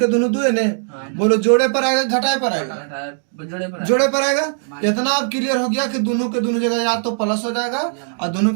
दोनों 2 है ने। बोलो जोड़े पर आएगा घटाए पर आएगा, जोड़े पर आएगा। इतना अब क्लियर हो गया कि दोनों के दोनों जगह या तो प्लस हो जाएगा और दोनों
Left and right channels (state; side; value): silent; left; digital silence